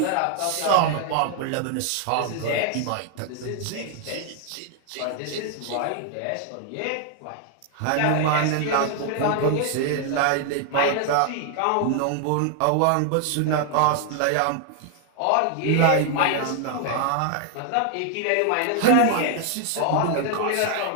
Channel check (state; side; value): different; both; correlation 0.00